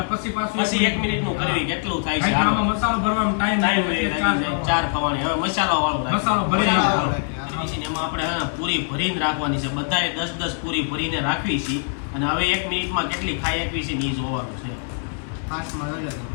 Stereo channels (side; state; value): right; silent; 63 dB below the other